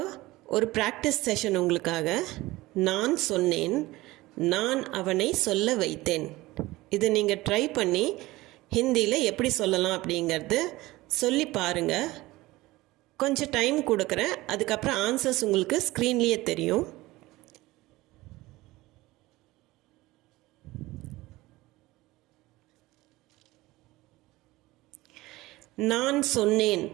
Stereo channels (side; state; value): left; quieter; 19.1 dB